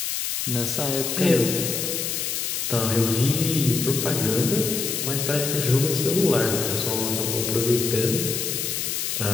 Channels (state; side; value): noise; left; hiss, 2 dB below the sound